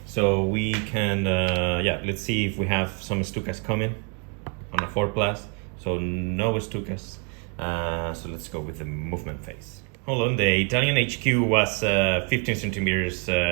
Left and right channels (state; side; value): quieter; left; 38.3 dB